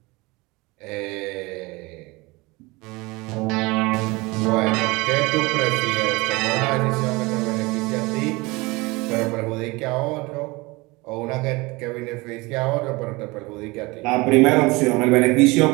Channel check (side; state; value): left; quieter; 23.7 dB